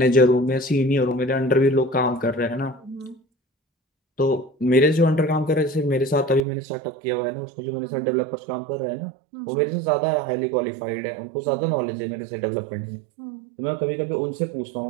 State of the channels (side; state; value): left; drops out; at 6.5 s